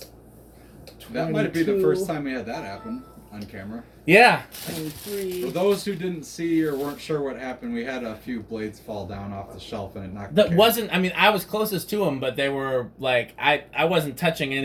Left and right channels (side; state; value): both; identical; correlation 1.00